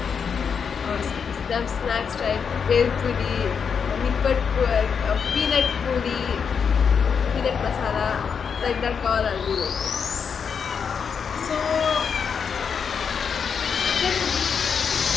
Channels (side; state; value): right; quieter; 6.5 dB